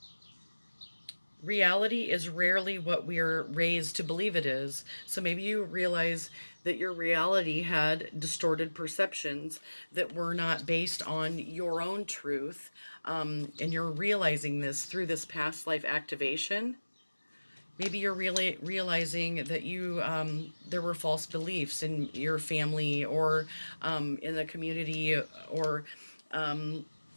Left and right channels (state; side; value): inverted; both; correlation -1.00